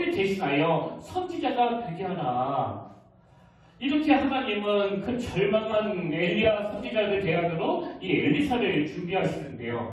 대신하여 선지자가 되게 하라. 이렇게 하나님은 그 절망한 엘리야 선지자를 대안으로 이 엘리사를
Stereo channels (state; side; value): identical; both; correlation 1.00